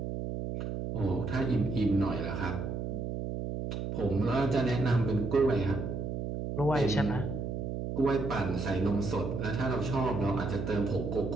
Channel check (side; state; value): right; noise; hum, 4 dB below the sound